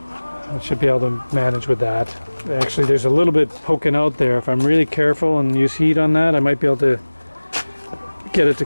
I should be able to manage with that. Actually, there's a little bit poking out there. If I'm really careful and use heat on that, I might be able to get it to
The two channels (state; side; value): inverted; both; correlation -1.00